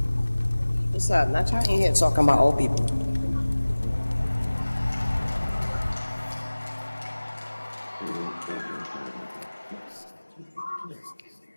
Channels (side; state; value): both; inverted; correlation -1.00